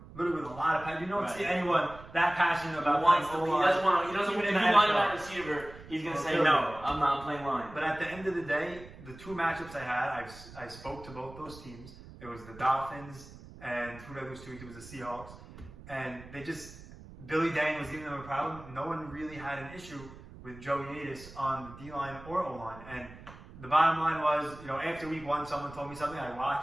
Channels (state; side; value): noise; right; rumble, 17 dB below the sound